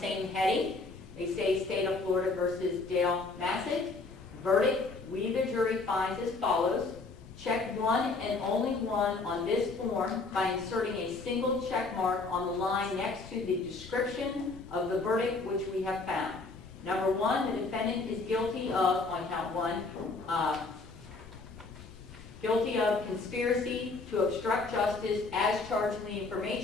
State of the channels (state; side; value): quieter; right; 3.7 dB